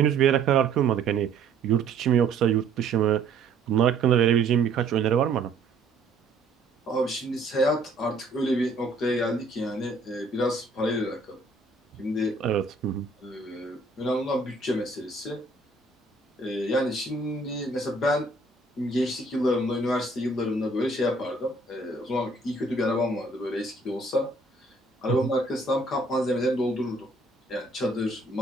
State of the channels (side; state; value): left; quieter; 3.4 dB